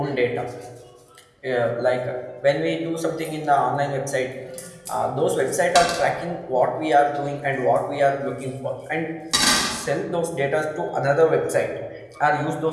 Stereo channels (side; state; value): both; identical; correlation 1.00